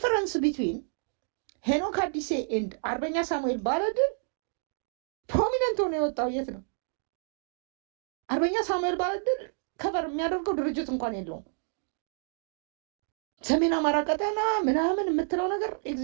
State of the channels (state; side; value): silent; left; digital silence